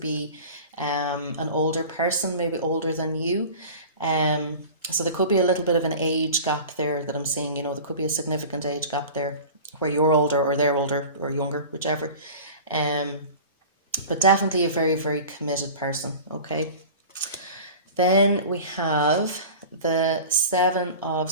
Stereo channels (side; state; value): both; inverted; correlation -0.38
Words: be an older person, maybe older than you. Um, so there could be a little bit of an age gap there that I'm seeing. There could be a significant age gap there, where you're older or they're older or younger, whichever. Um, but definitely a very, very committed person. Okay. Then we have the Seven of